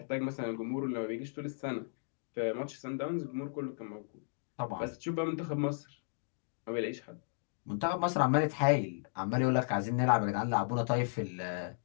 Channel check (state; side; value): silent; right; digital silence